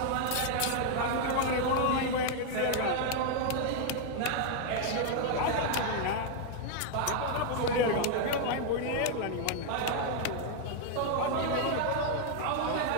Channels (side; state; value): both; different; correlation 0.00